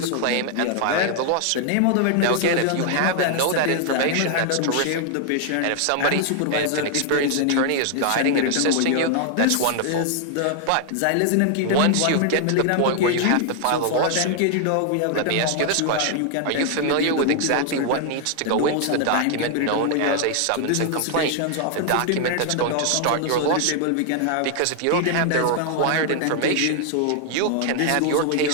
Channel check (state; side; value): different; both; correlation 0.00